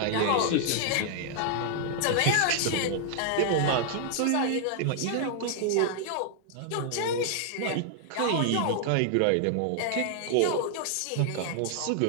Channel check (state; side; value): different; both; correlation 0.00